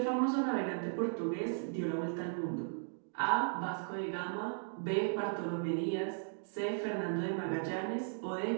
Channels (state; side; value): silent; left; digital silence